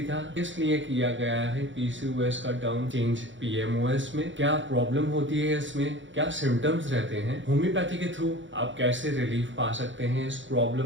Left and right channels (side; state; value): left; late; 0.55 ms